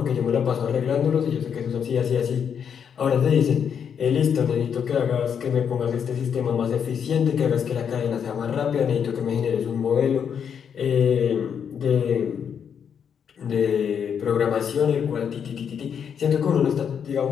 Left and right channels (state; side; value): quieter; right; 7.6 dB